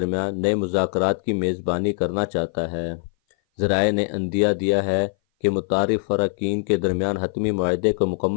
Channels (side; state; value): right; silent; 58 dB below the other